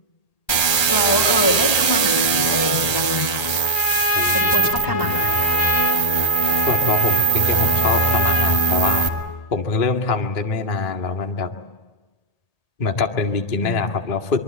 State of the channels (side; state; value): right; late; 1.8 ms